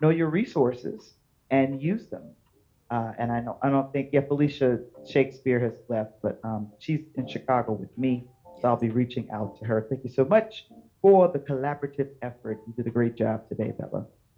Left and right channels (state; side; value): identical; both; correlation 1.00